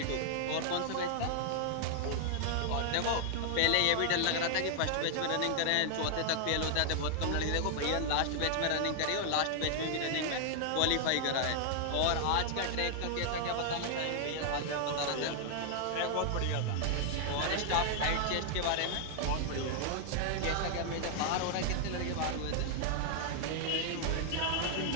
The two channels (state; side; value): different; both; correlation 0.00